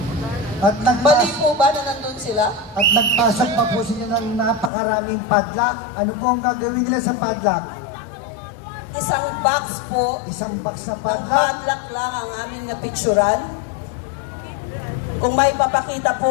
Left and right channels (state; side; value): drops out; right; at 4.7 s